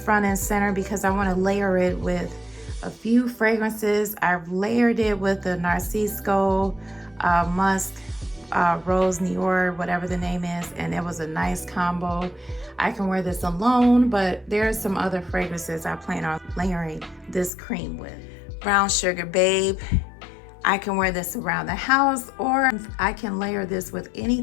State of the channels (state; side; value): drops out; right; at 17.5 s